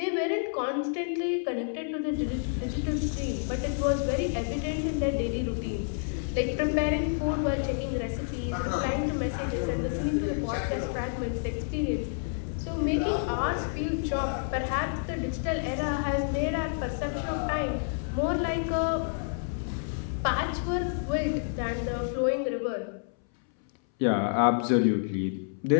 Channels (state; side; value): silent; right; 59 dB below the other